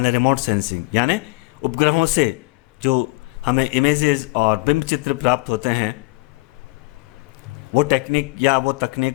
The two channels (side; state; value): right; quieter; 24.9 dB